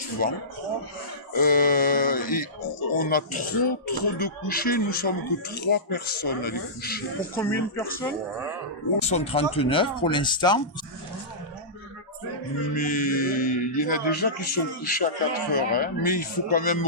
et on a trop de couchers, nous sommes que 3 personnes à les coucher. Pour combien de personnes? Ils sont 39 pour l'instant. Mais il y en a déjà qui sont couchés à 4 heures, hein, mais il faut quand même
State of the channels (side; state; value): both; normal; correlation -0.18